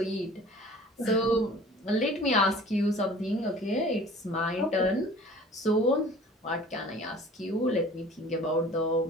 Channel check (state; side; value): normal; both; correlation 0.47